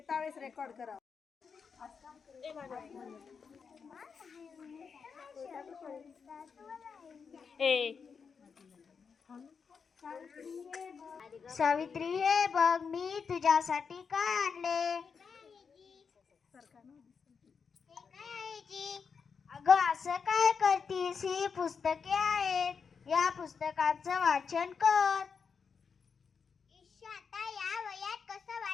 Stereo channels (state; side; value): quieter; right; 5.9 dB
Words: वेळेस रेकॉर्ड करा. सावित्री हे बघ मी तुझ्यासाठी काय आणले. अगं असं काय करतीस, ही पुस्तके आहेत, या पुस्तकाचं वाचन कर. आता या वयात कसं